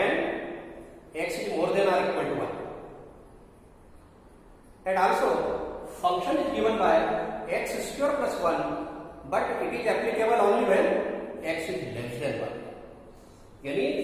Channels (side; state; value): both; identical; correlation 1.00